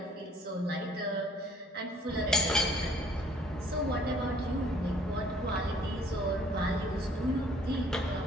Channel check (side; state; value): both; normal; correlation 0.58